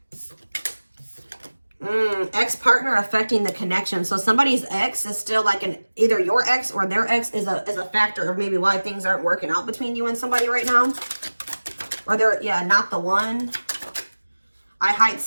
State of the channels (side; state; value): both; inverted; correlation -1.00